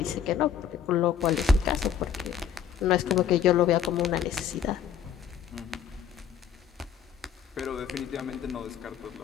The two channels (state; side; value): quieter; right; 8.0 dB